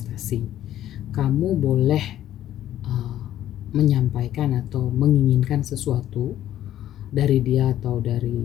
Kamu boleh menyampaikan atau menginginkan sesuatu dari dia atau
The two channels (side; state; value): right; quieter; 12.2 dB